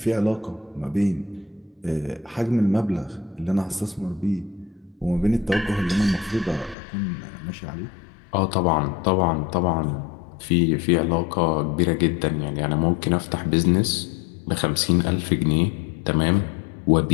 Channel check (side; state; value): right; drops out; at 6.8 s